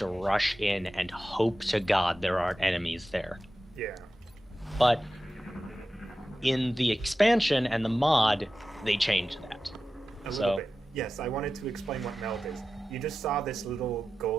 rush in and hope to God there aren't enemies there. Yeah. But in the expansion and the mod, they changed that. A little bit. Yes, I wanted to explain what meld is. You just saw this little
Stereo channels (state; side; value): normal; both; correlation 0.94